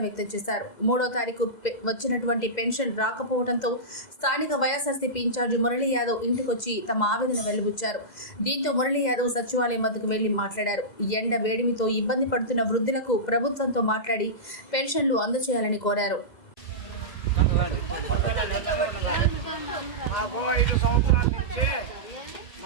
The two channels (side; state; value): right; late; 2.0 ms